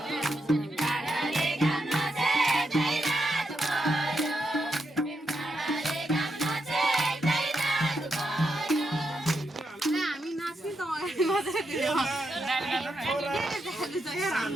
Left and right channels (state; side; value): normal; both; correlation 0.83